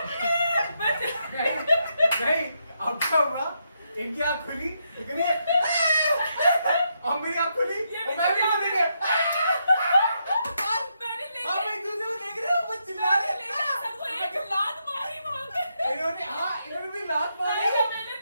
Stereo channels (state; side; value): inverted; both; correlation -0.80